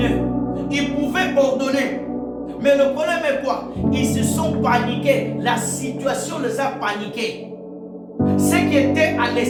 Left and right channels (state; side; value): identical; both; correlation 1.00